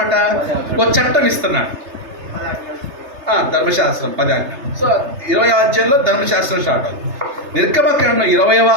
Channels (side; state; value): left; late; 3.3 ms